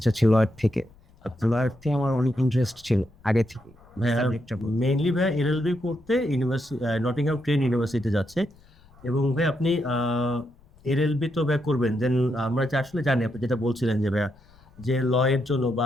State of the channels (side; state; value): left; noise; rumble, 28 dB below the sound